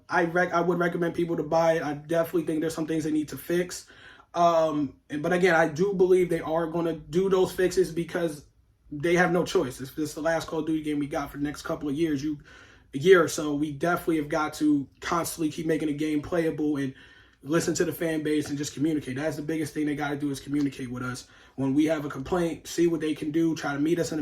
would recommend people to buy it. I definitely think there's some things they need to fix. But again, I do believe they are going to do those fixes because they have no choice. If this is the last Call of Duty game we got for the next couple of years, a year or so, we definitely have got to constantly keep making the game playable and listen to the fan base and just communicate. That's the biggest thing they got to do, is communicate with us. When we have a complaint, see what they can do, try to meet us in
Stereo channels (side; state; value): both; identical; correlation 1.00